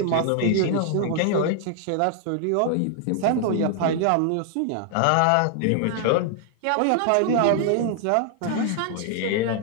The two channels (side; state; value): both; different; correlation 0.00